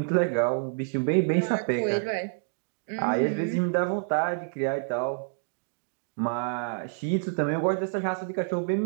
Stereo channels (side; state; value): left; silent; digital silence